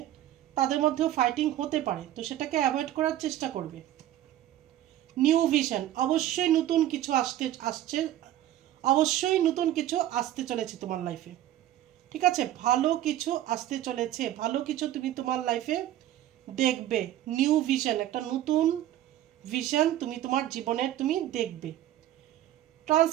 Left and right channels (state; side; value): quieter; left; 12.9 dB